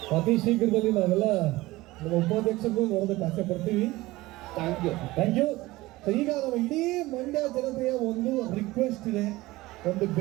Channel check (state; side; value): quieter; left; 19.2 dB